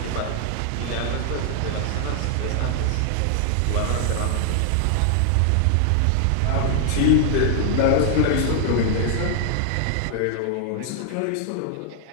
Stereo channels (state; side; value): different; both; correlation 0.00